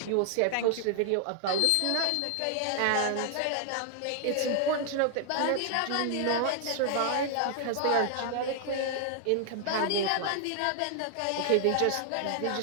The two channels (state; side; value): different; both; correlation 0.00